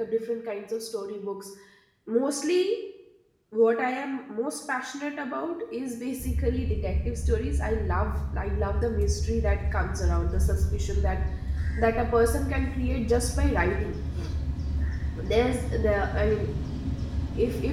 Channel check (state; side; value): identical; both; correlation 1.00